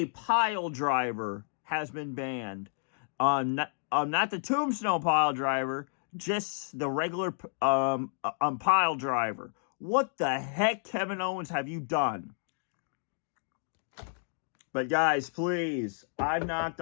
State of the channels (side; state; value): right; silent; digital silence